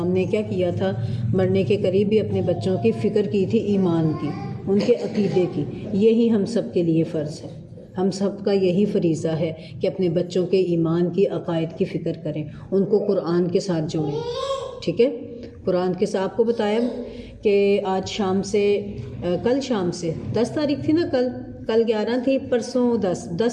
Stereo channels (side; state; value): both; identical; correlation 1.00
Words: نے کیا کیا تھا، مرنے کے قریب بھی اپنے بچوں کی فکر کی تھی، ایمان کی، ان کے عقیدے کی۔ یہی ہم سب کے لیے فرض ہے، ہم سب کا یہی فریضہ ہے کہ اپنے بچوں کے ایمان کی، عقائد کی فکر کریں، ان کو قرآن کے ساتھ جوڑیں، ٹھیک ہے۔ قرآن کے ساتھ آپ کو بتایا کہ آج شام سے، کل شام سے 10 تاریخ تھی نا، کل 11 تھی، پرسوں